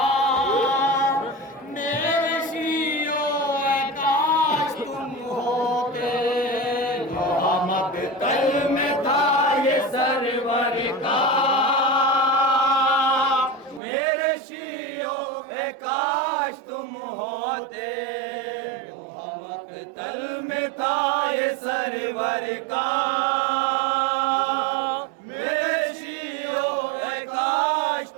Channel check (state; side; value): drops out; left; at 13.8 s